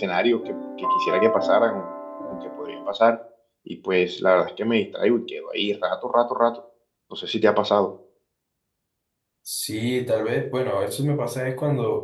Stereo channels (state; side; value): identical; both; correlation 1.00